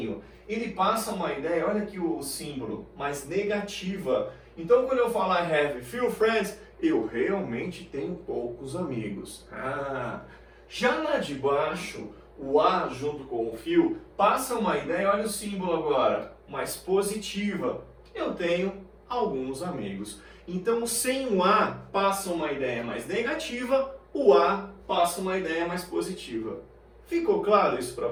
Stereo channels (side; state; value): both; identical; correlation 1.00